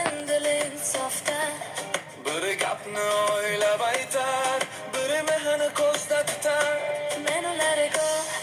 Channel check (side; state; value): both; identical; correlation 1.00